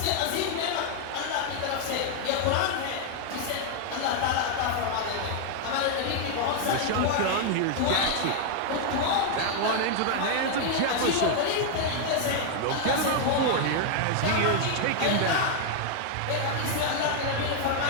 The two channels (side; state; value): both; different; correlation 0.00